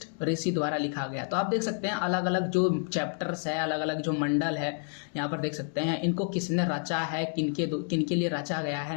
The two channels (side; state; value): right; silent; 56 dB below the other